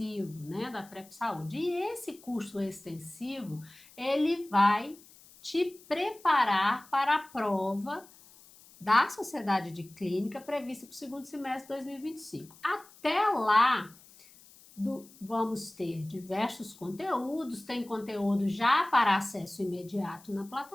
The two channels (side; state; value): left; noise; hiss, 24 dB below the sound